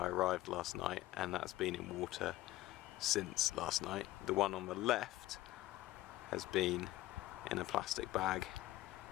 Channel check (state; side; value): quieter; right; 16.3 dB